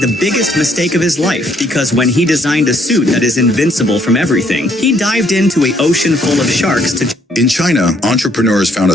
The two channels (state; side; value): normal; both; correlation 0.68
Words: the biggest mistake of his life, because when he designed a suit that is invincible from everything, he dived into an ocean full of sharks to... In China, entrepreneurs found a